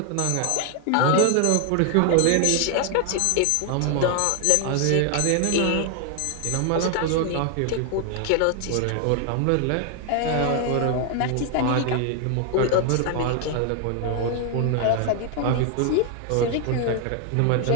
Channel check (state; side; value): different; both; correlation 0.00